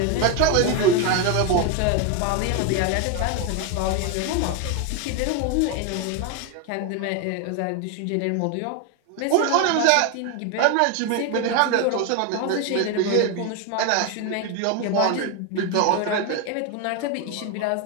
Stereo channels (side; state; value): both; different; correlation 0.01